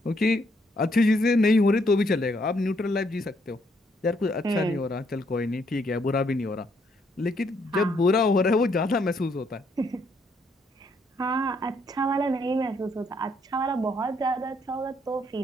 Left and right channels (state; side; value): normal; both; correlation 0.71